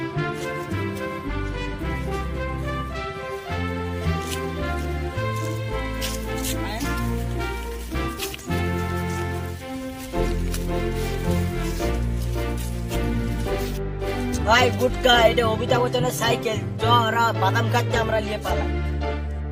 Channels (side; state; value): both; identical; correlation 1.00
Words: ভাই গুটকা এটা অমিতাভ বচ্চনের সাইকেল, চ ওরা বাদাম খাচ্ছে আমরা নিয়ে পালাম।